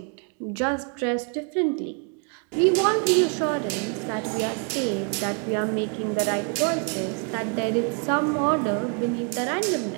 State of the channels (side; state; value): left; quieter; 39.6 dB